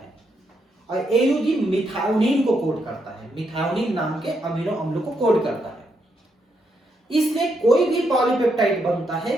और AUG मिथायोनिन को कोड करता है, मिथायोनिन नाम के अमीनो अम्ल को कोड करता है। इसलिए कोई भी पॉलीपेप्टाइड बनता है,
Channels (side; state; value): both; normal; correlation 0.79